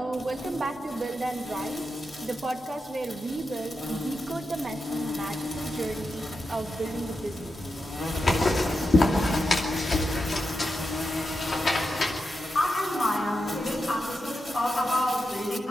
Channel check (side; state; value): both; normal; correlation 0.88